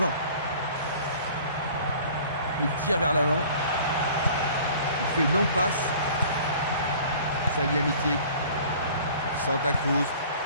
Il tire vers l'avant. Il fait une longue passe. Salihamidzic. Santa Cruz.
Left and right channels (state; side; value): inverted; both; correlation -0.48